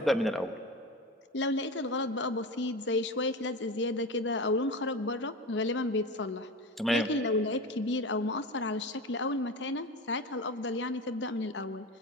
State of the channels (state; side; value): normal; both; correlation 0.27